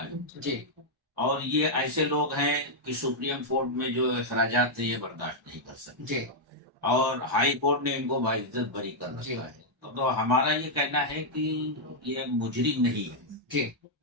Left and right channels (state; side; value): normal; both; correlation -0.04